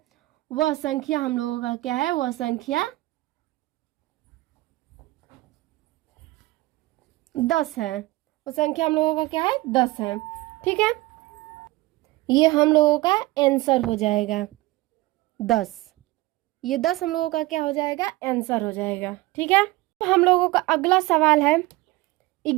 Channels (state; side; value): quieter; left; 19.7 dB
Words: वह संख्या हम लोगों का क्या है? वह संख्या 10 है। वो संख्या हम लोगों का क्या है? 10 है, ठीक है। ये हम लोगों का आंसर हो जाएगा 10। ये 10 हम लोगों का क्या हो जाएगा? आंसर हो जाएगा, ठीक है। हम लोगों का अगला सवाल है